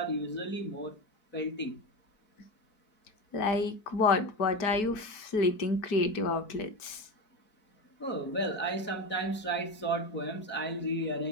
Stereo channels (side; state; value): right; late; 4.6 ms